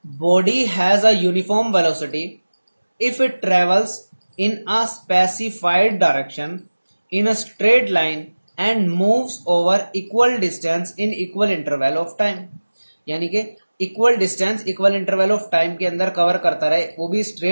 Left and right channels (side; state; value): both; inverted; correlation -1.00